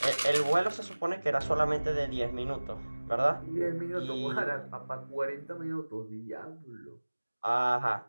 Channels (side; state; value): both; inverted; correlation -1.00